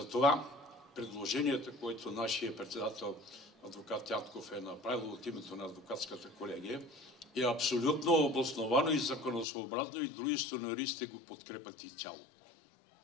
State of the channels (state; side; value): drops out; right; at 9.5 s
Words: предложението, което нашия председател адвокат Ятков е направил от името на адвокатската колегия, е абсолютно обосновано и законосъобразно и дружеството на юристите го подкрепят и цяло.